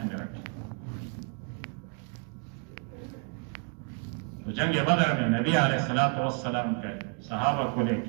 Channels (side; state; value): left; quieter; 38.3 dB